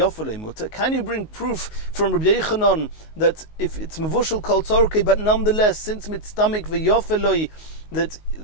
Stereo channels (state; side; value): late; right; 19 ms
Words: muta. Can you bring proof from Rabbi Yochanan that if it's mevushel kol tzorkei, but nonetheless, since mitztamik v'yofalei, that